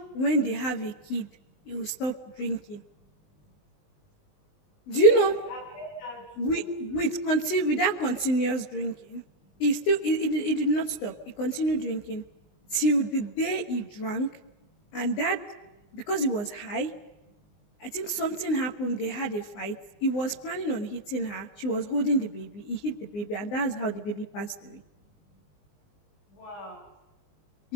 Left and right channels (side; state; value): right; late; 20 ms